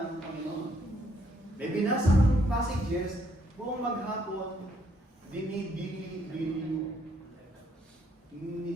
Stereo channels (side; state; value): both; normal; correlation 0.70